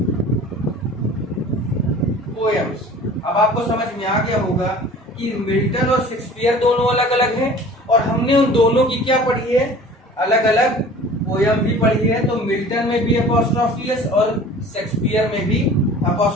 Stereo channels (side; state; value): both; normal; correlation 0.44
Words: पोएम्स। अब आपको समझ में आ गया होगा कि मिल्टन और शेक्सपियर दोनों अलग अलग हैं और हमने उन दोनों की क्या पढ़ी है, अलग अलग पोयम भी पढ़ी है। तो मिल्टन में भी अपॉस्ट्रोफी एस और शेक्सपियर में भी